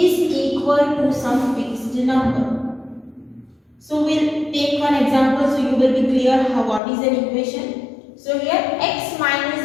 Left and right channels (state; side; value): drops out; right; at 6.8 s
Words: equal to some fixed number. So we'll take one example so you will be clear how what is an equation. So here x